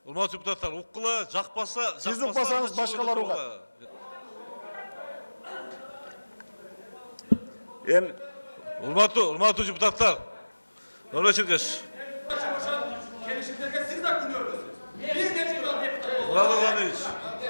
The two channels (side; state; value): both; inverted; correlation -1.00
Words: Urmatçı deputatlar, ukkula, jakpasa... Siz ukbasanız başkaları ukat. Urmatçı deputatlar. Ömrek Çirkeş. Gelişimlerge siz de gülüyorsunuz. Biz de çıkıyoruz. Murat Organiç.